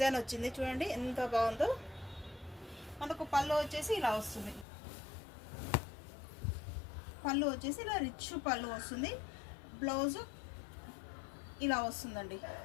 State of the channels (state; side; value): drops out; right; at 4.7 s